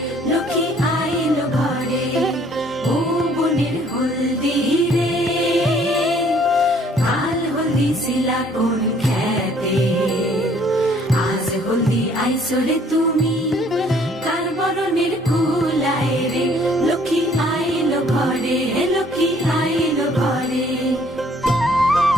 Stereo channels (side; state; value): both; normal; correlation 0.60